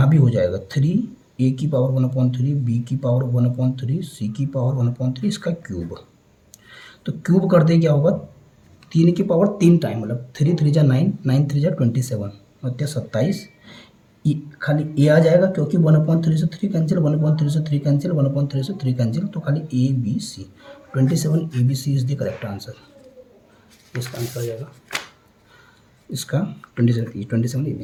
भी हो जाएगा 3 ए की पावर 1/3, बी की पावर 1/3, सी की पावर 1/3, इसका क्यूब। तो क्यूब कर दे क्या होगा, 3 की पावर 3 टाइम, मतलब 3 3 जा 9, 9 3 जा 27, मतलब 27। खाली ए आ जाएगा क्योंकि 1/3 से 3 कैंसिल, 1/3 से 3 कैंसिल, 1/3 से 3 कैंसिल, तो खाली A B C, 27 A B C is the correct answer. इसका आंसर आ जाएगा इसका 27 ए बी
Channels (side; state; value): both; identical; correlation 1.00